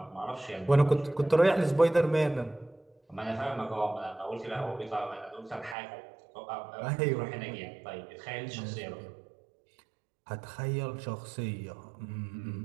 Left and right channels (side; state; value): left; drops out; at 5.8 s